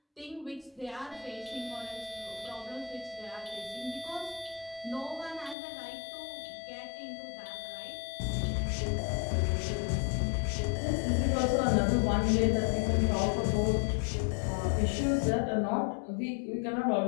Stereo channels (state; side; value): drops out; right; at 5.6 s